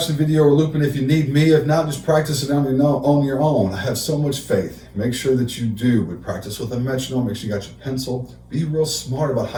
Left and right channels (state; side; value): identical; both; correlation 1.00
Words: the video or looping if you need me. If not, just practice it on your own. I have so much faith. Make sure that you do. But practice with a metronome. Make sure you got your pencil. Be real smart about